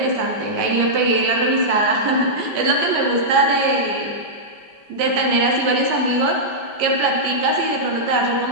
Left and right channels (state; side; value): late; left; 5.1 ms